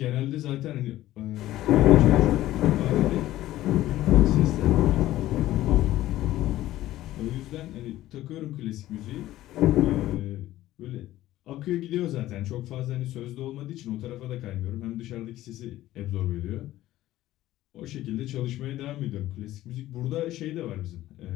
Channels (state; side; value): quieter; right; 15.0 dB